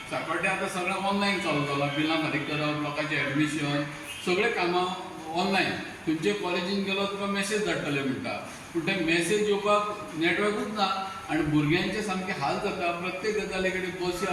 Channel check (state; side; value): identical; both; correlation 1.00